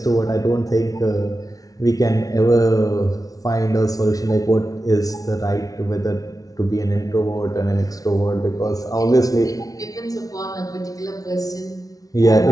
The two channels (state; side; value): late; right; 0.18 ms